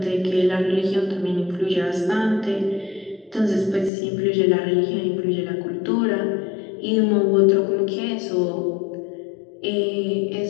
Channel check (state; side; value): drops out; right; at 3.9 s